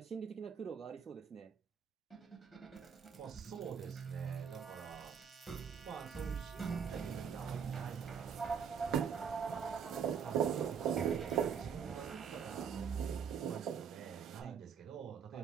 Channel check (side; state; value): left; quieter; 7.1 dB